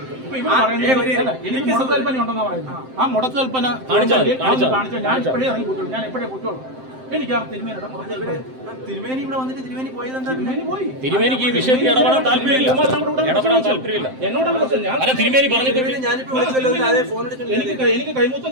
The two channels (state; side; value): late; left; 7.7 ms